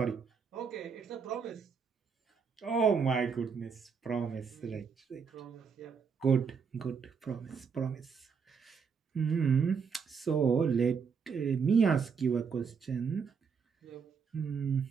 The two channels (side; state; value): left; quieter; 6.0 dB